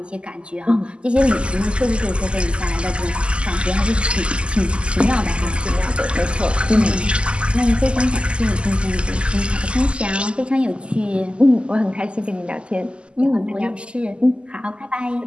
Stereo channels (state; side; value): late; left; 0.052 ms